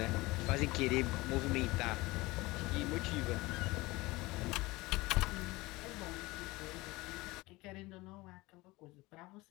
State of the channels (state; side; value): quieter; right; 21.3 dB